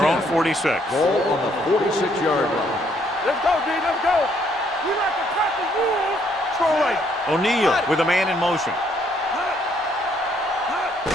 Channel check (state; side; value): normal; both; correlation 0.68